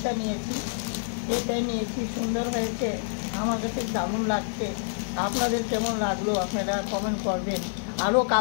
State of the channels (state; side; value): silent; right; 60 dB below the other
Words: নিয়েছি, এটাই নিয়েছি, সুন্দর হয়েছে, আমার কাছে দারুণ লাগছে। আপনাদের কেমন লাগলো আপনারা কমেন্ট করবেন। আরও